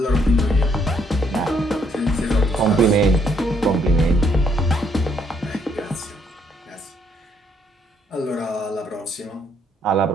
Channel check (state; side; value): normal; both; correlation 0.70